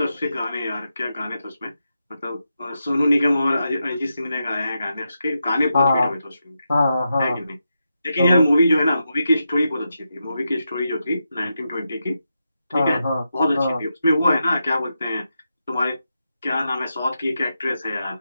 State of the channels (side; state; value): both; inverted; correlation -0.86